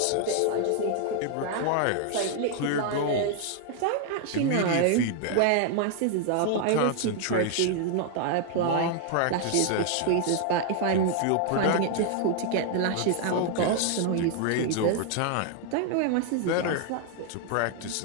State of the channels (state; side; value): different; both; correlation 0.00